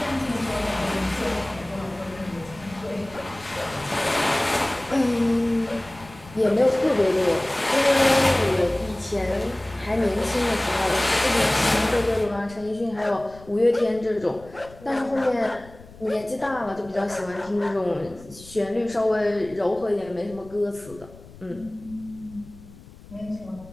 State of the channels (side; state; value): left; noise; rumble, 20 dB below the sound